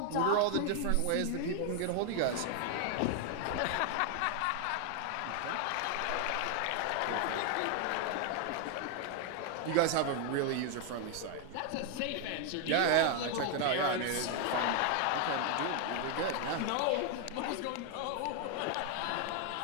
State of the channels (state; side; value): different; both; correlation 0.00